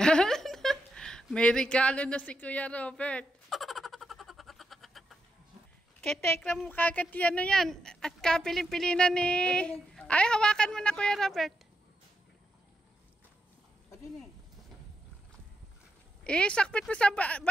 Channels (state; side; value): normal; both; correlation 0.84